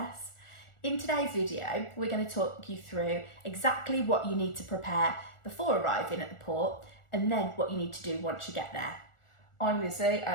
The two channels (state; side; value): late; right; 1.4 ms